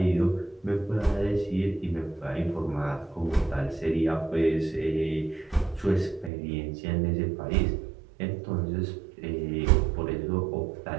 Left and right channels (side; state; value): left; drops out; at 6.3 s